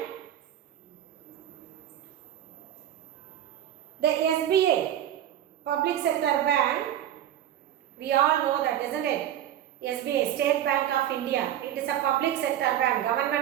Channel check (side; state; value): left; quieter; 11.4 dB